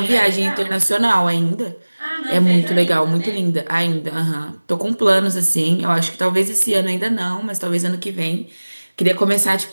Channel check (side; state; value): both; inverted; correlation -1.00